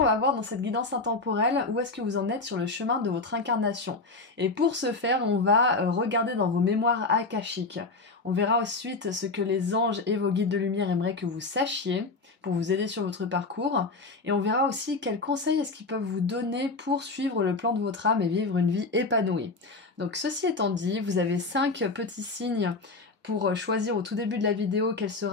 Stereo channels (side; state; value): right; quieter; 3.7 dB